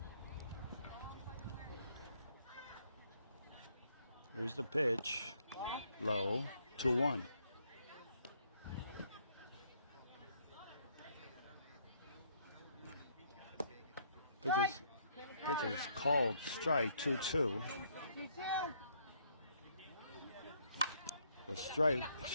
Here's the pitch. Low. 2-1. Pitch is called strike 2-2. You too. The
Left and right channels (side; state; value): both; inverted; correlation -0.68